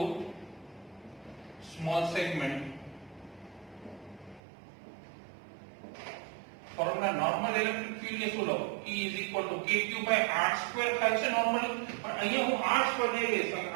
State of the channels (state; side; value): drops out; left; at 4.4 s